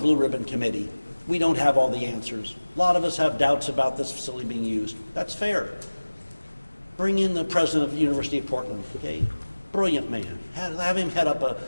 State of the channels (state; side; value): inverted; both; correlation -1.00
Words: ribbon committee. We don't have all the answers. A lot of us have doubts about this facility being used. That's fair. Bring in the president of the University of Portland, okay? Brilliant man. Have him head up